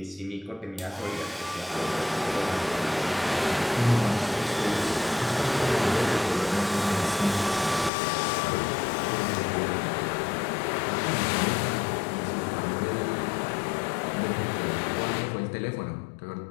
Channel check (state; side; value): drops out; right; at 7.9 s